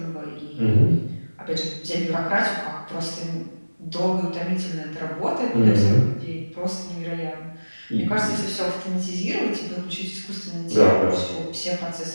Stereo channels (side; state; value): both; inverted; correlation -1.00